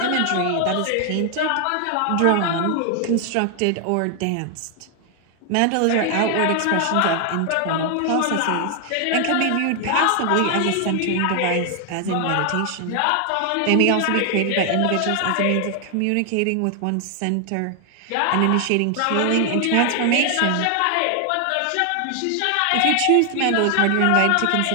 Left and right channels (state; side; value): different; both; correlation 0.00